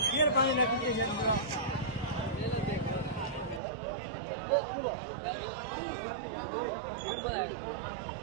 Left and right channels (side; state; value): left; drops out; at 3.6 s